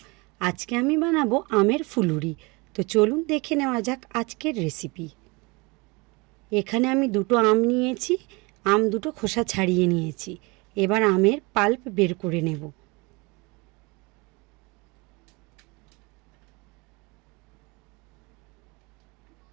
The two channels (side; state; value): left; quieter; 26.8 dB